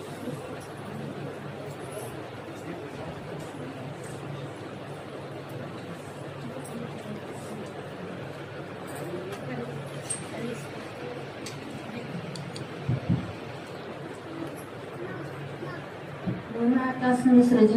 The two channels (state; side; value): identical; both; correlation 1.00